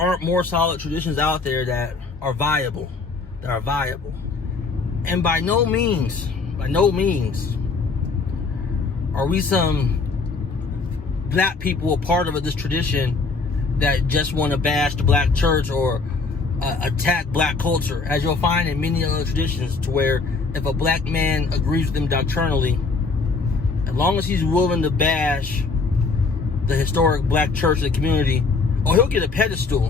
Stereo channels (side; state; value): right; quieter; 4.3 dB